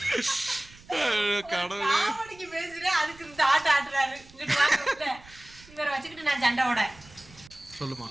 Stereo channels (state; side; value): noise; right; rumble, 23 dB below the sound